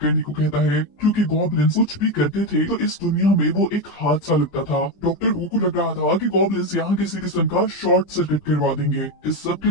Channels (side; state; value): right; late; 20 ms